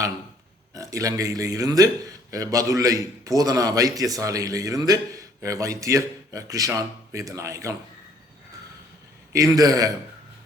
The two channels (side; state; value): both; normal; correlation 0.61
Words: இலங்கையிலே இருந்து பதுளை போதனா வைத்தியசாலையிலே இருந்து வைத்தியர் கிருஷான் வேதநாயகம். இந்த